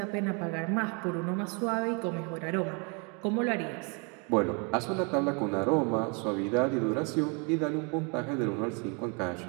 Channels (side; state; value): left; quieter; 33.7 dB